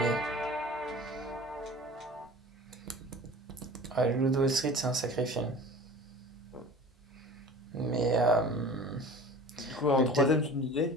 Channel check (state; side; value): normal; both; correlation 0.40